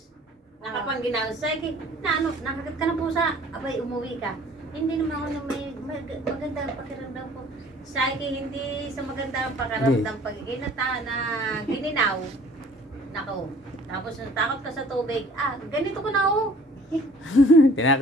Nakapanginaw. Sabi, nakagat ka na po sa, abay, umuwi ka. Hindi naman ako na may magandang pakiramdam ko. Sabi, hindi sa magandang pakiramdam pag na gininaw. Nako. Tapos natakot ka sa tubig. Ganito ko na oh.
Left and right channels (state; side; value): normal; both; correlation 0.52